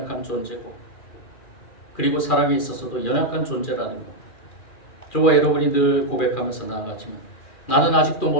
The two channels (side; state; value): right; late; 2.4 ms